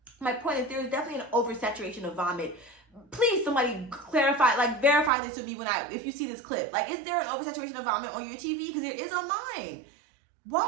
my point is there's definitely an oversaturation of vomit. Please, somebody clarify, like verify this with me if you see this clip. Like, is there an oversaturation of vomit on your TV? Because there is on mine.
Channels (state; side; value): drops out; left; at 5.1 s